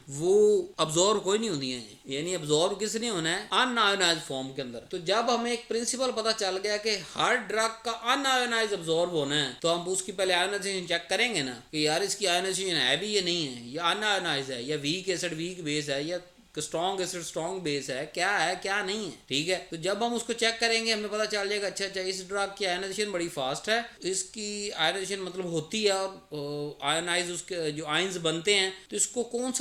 वो अब्जॉर्ब कोई नहीं होती है, यानी अब्जॉर्ब किस नहीं होना है, अनआयोनाइज फॉर्म के अंदर। तो जब हमें एक प्रिंसिपल पता चल गया कि हर ड्रग का अनआयोनाइज अब्जॉर्ब होना है तो हम उसकी पहले आयोनाइजेशन चेक करेंगे ना कि यार इसकी आयोनाइजेशन है भी या नहीं है, या अनआयोनाइज है, या वीक एसिड वीक बेस है, या कि स्ट्रॉन्ग एसिड स्ट्रॉन्ग बेस है क्या नहीं है, ठीक है। तो जब हम उसको चेक करेंगे हमें पता चल जाएगा अच्छा इस ड्रग की आयनाइजेशन बड़ी फास्ट है, इसकी आयनाइजेशन मतलब होती है और आयनाइज उसके जो आयंस बनते हैं, तो इसको कौन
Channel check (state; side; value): identical; both; correlation 1.00